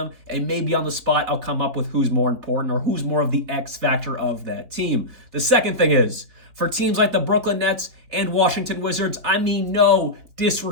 and maybe on the spot I'll come up with who's more important or who's more of the X factor of that team. The second thing is, for teams like the Brooklyn Nets and Washington Wizards, I mean no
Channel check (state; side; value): late; left; 4.3 ms